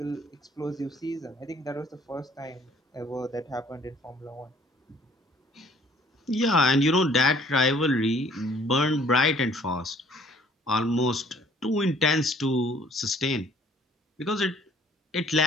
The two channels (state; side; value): normal; both; correlation 0.58